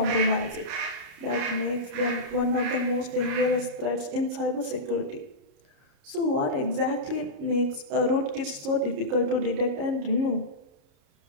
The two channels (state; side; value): late; left; 30 ms